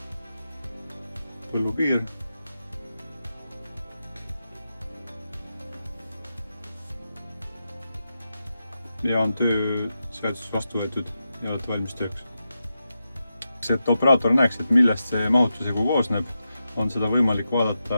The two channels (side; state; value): both; inverted; correlation -0.89